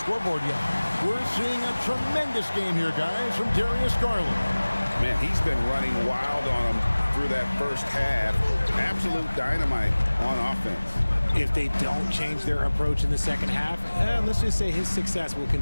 yet. We're seeing a tremendous game here, guys, from Darius Garland. Man, he's been running wild on them through that first half. Absolute dynamite on offense. If they don't change their approach in the second half, let's just say his success will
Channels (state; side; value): inverted; both; correlation -1.00